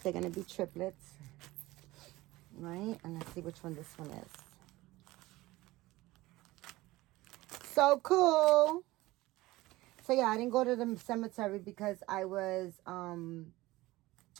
going to be triplets. Right? And let's see which one this one is. So cool. So yeah, I didn't go to the cemetery because I was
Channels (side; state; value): left; quieter; 18.9 dB